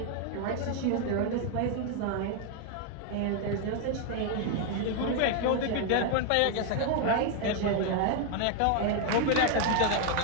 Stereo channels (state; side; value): different; both; correlation 0.00